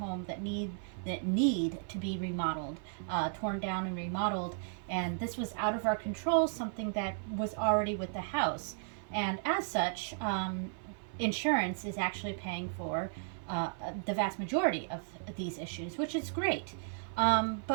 that need to be remodeled, torn down and remodeled. And this was out of our control, something that was already with the house. And as such, insurance is actually paying for the vast majority of these issues, which is great.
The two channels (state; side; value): silent; left; 55 dB below the other